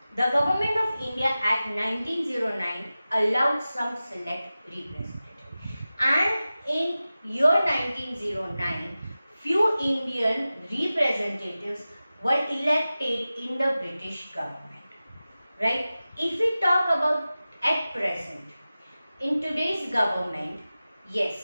The Government of India Act 1909 allowed some select representatives, and in year 1909 few Indian representatives were elected in the British government, right? If we talk about at present, in today's government,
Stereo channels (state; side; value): inverted; both; correlation -0.95